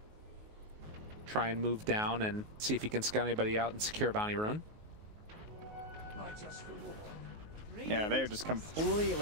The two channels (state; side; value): late; left; 19 ms